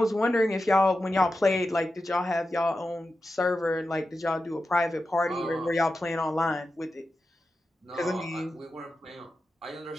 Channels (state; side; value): normal; both; correlation 0.91